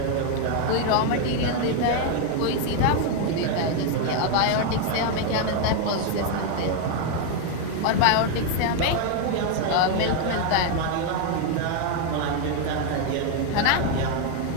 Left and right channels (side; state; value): both; different; correlation 0.01